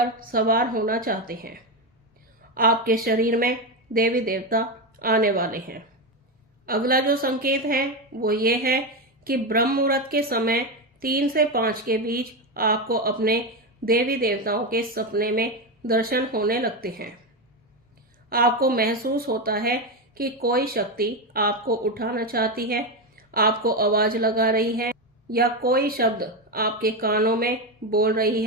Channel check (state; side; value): normal; both; correlation 0.12